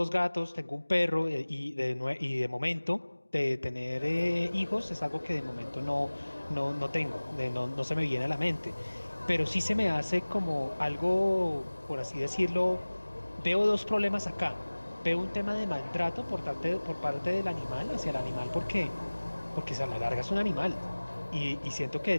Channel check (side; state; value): both; inverted; correlation -1.00